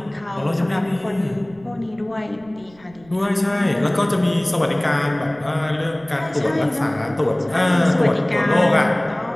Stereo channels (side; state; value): right; noise; rumble, 26 dB below the sound